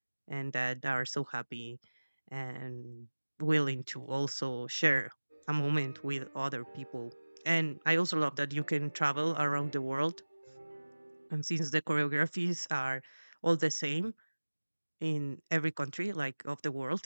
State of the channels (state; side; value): inverted; both; correlation -1.00